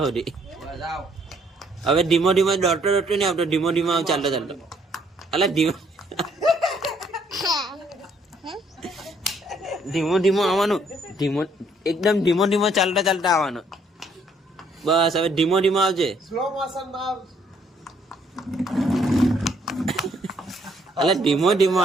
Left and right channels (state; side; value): normal; both; correlation 0.66